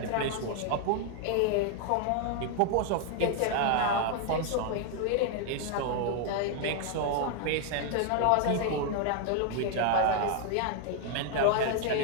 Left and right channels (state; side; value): different; both; correlation 0.00